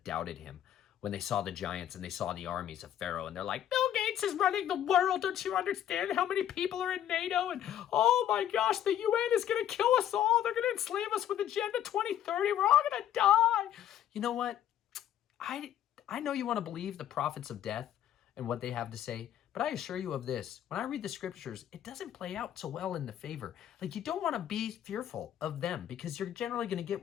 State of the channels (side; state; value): right; quieter; 10.9 dB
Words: doubted him when they saw the giants and they saw the armies of Pharaoh. And they're like, Bill Gates is running the world. Don't you understand how many people are in NATO? And oh my gosh, the UN is going to kill us all. They're going to enslave us with Agenda 2030. We're all going to die. You know what? I know you want to believe the prophets of death and what they have to say. But I assure you of this, when I read the scriptures, it doesn't play out so well in the favor. Like you don't want to be fearful of them because you're generally going to get